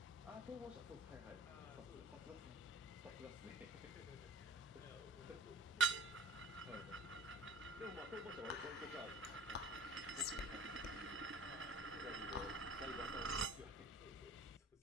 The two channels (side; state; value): both; normal; correlation 0.46